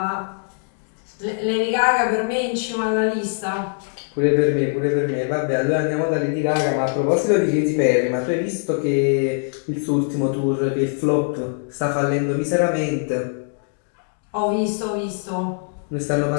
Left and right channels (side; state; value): right; silent; 64 dB below the other